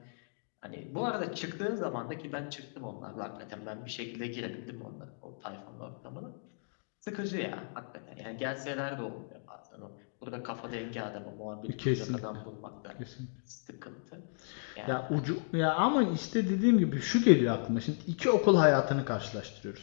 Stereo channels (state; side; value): silent; right; digital silence